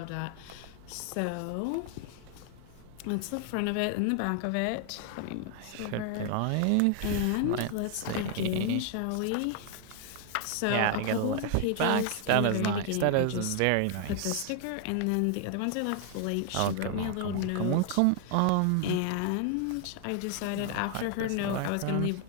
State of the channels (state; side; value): different; both; correlation 0.00